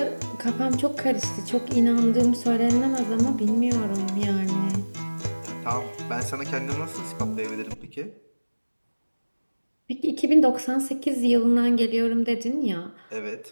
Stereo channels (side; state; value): both; inverted; correlation -1.00